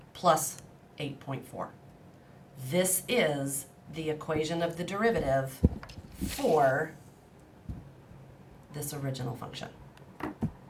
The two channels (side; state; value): both; identical; correlation 1.00